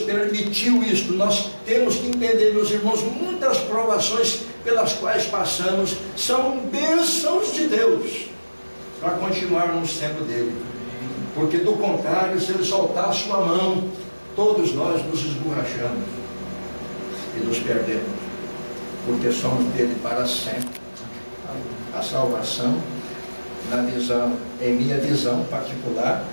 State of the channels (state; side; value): inverted; both; correlation -1.00